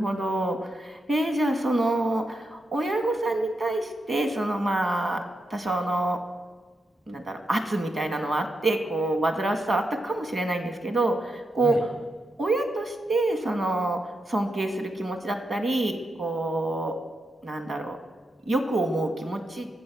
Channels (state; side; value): normal; both; correlation 0.85